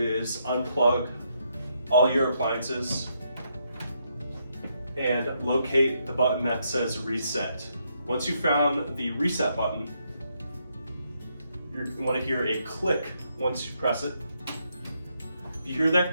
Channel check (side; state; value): both; inverted; correlation -0.77